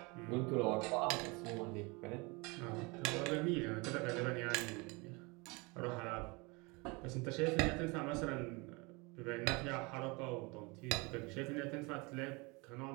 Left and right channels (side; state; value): left; quieter; 27.3 dB